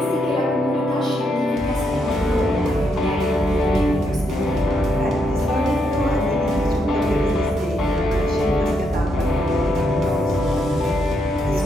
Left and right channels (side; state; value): both; normal; correlation 0.79